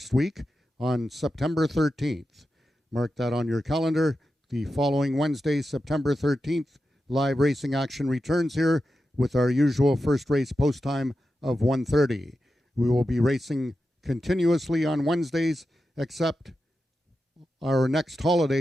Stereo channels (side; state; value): both; normal; correlation 0.90